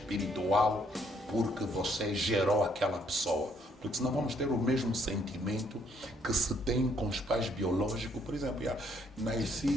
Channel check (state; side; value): normal; both; correlation 0.68